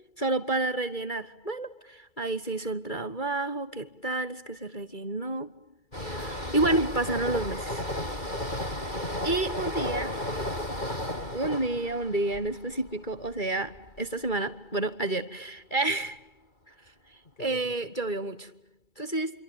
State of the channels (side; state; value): right; late; 2.3 ms